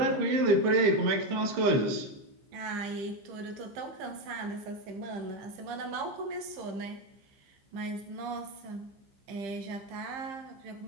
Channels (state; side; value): late; left; 15 ms